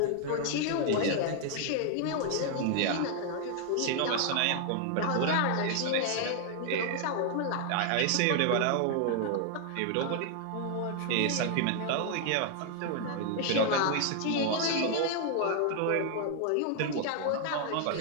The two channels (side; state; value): both; different; correlation 0.00